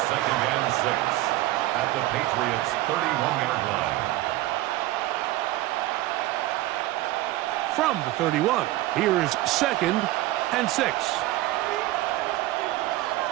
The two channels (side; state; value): left; quieter; 16.8 dB